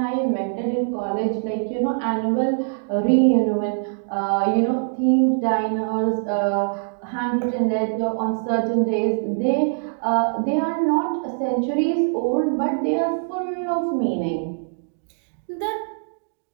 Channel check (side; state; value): left; silent; digital silence